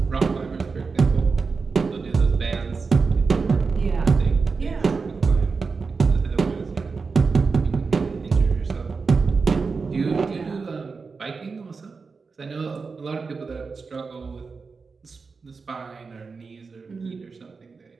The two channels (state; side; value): quieter; left; 4.7 dB